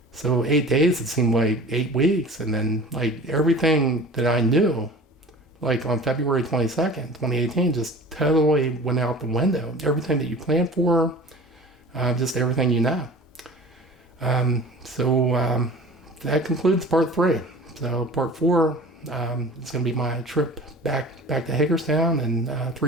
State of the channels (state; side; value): normal; both; correlation 0.41